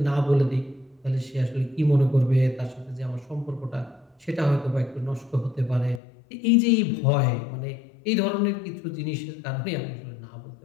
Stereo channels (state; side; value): drops out; right; at 6.0 s